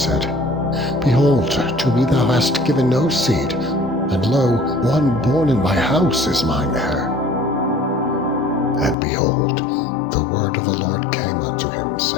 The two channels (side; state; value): right; drops out; at 9.0 s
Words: Behold, to me thou hast given no seed, and lo, one born in my house is mine heir. And behold, the word of the Lord came unto him,